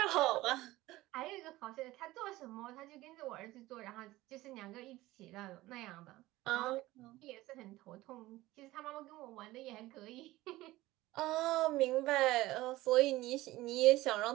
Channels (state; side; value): quieter; left; 17.8 dB